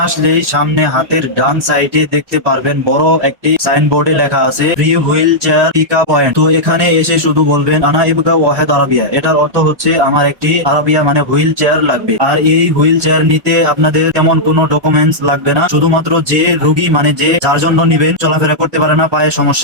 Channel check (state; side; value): late; left; 1.2 ms